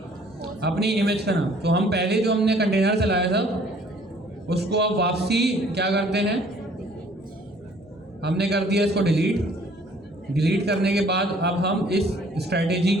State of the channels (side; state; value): both; normal; correlation 0.57